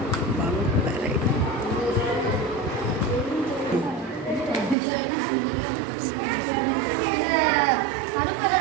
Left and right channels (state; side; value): drops out; left; at 4.8 s